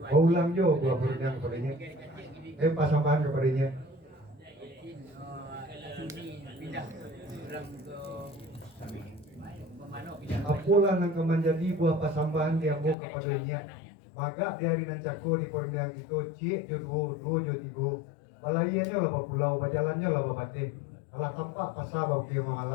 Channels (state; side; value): drops out; right; at 13.0 s